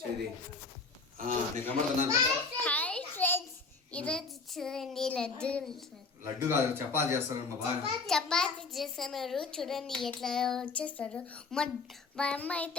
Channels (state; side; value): quieter; right; 4.3 dB